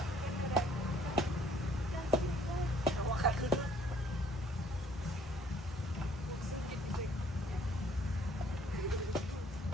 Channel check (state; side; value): normal; both; correlation 0.60